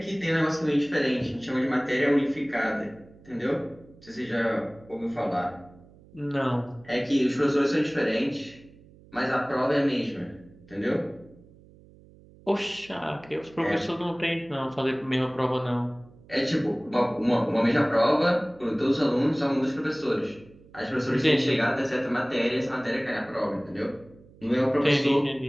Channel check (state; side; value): noise; right; hum, 24 dB below the sound